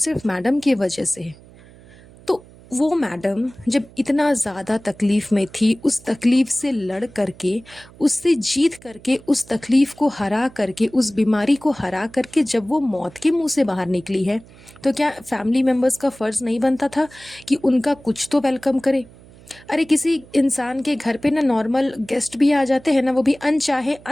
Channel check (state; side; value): noise; right; hum, 23 dB below the sound